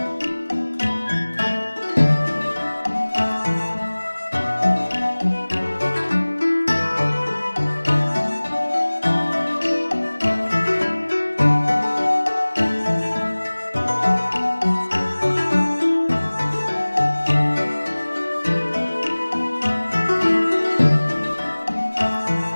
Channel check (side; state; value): both; inverted; correlation -1.00